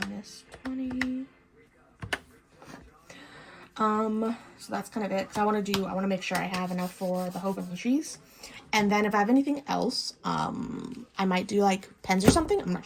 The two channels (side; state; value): both; identical; correlation 1.00